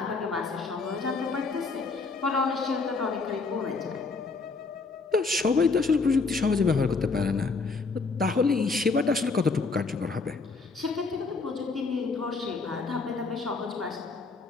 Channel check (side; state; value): right; quieter; 4.2 dB